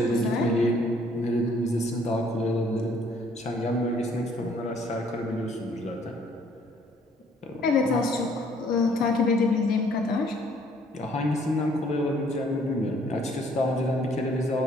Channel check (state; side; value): normal; both; correlation 0.62